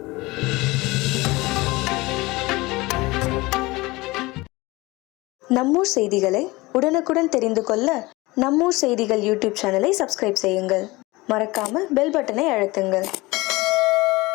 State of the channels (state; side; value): quieter; right; 21.9 dB